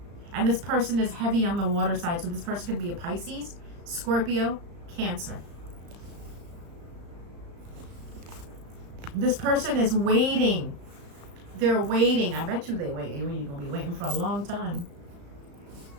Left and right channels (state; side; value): late; left; 35 ms